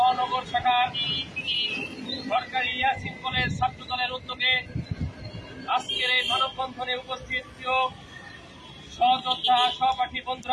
শাখার সরকারি ইয়াসিন কলেজ ছাত্রদলের উদ্যোগে আজকের এই মানববন্ধনে উপস্থিত সহযোদ্ধা সহপাঠী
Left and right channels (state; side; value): identical; both; correlation 1.00